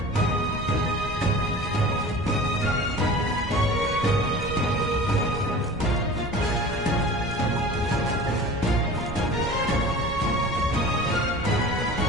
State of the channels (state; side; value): normal; both; correlation 0.40